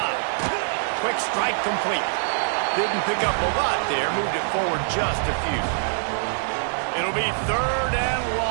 Quick strike complete. Didn't pick up a lot there. Moved it forward just a few. It'll be 3rd and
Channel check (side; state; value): left; silent; digital silence